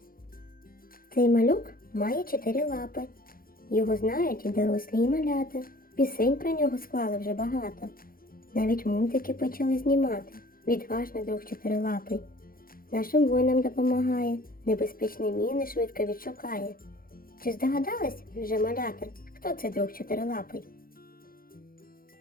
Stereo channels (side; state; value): right; late; 0.42 ms